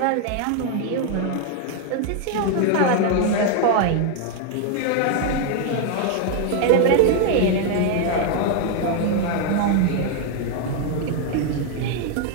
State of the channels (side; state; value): both; different; correlation 0.00